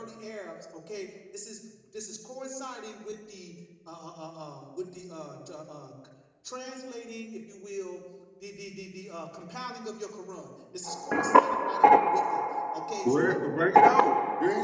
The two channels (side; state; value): both; identical; correlation 1.00